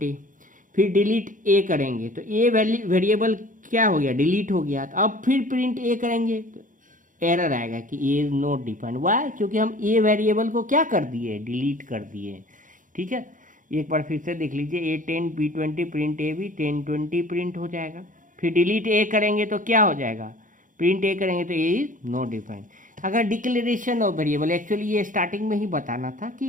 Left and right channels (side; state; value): left; late; 0.38 ms